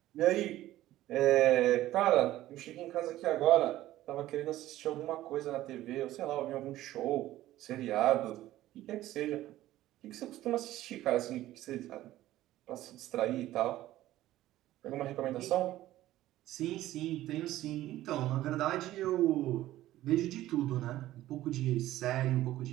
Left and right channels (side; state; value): left; quieter; 14.9 dB